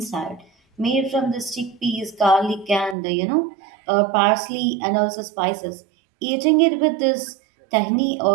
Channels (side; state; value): left; drops out; at 3.0 s